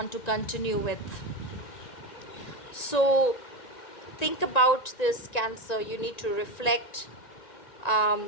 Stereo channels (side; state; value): right; late; 1.9 ms